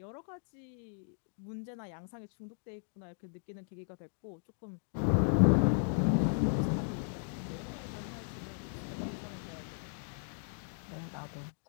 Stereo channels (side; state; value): right; silent; digital silence